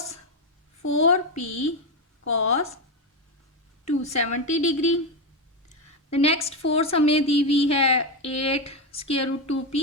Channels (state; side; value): normal; both; correlation 0.10